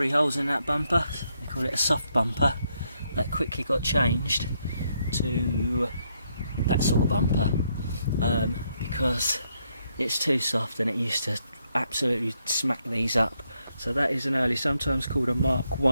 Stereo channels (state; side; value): inverted; both; correlation -0.77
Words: holes in that bumper. They call it a soft bumper. That quickly got changed to that sort of bumper because it's too soft, and it used to absolutely smack these up. So that is an early, sometimes called a Mark